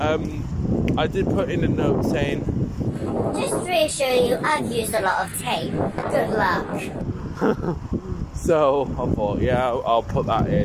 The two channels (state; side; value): identical; both; correlation 1.00